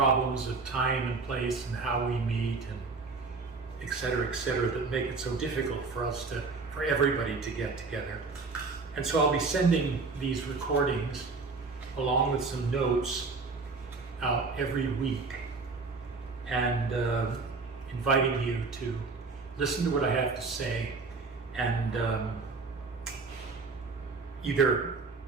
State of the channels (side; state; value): left; quieter; 4.2 dB